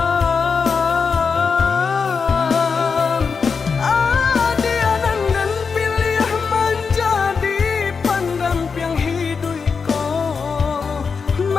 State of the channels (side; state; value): right; quieter; 5.4 dB